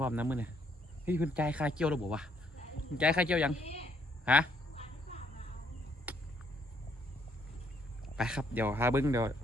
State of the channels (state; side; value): normal; both; correlation 0.69